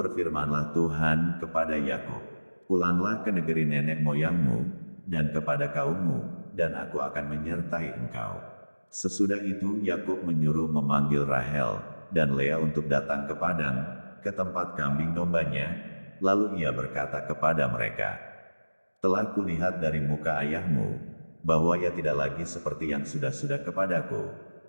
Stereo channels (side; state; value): both; inverted; correlation -1.00